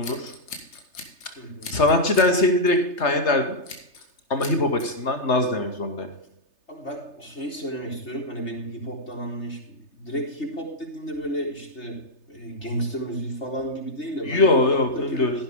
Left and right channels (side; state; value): right; late; 3.3 ms